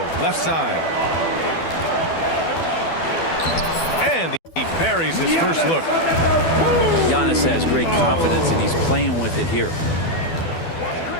left side. And he buries his first look. Giannis has great confidence, and he's playing with it here.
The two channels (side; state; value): right; late; 12 ms